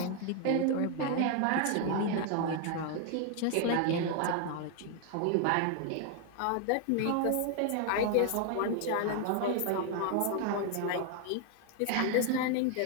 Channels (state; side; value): different; both; correlation 0.01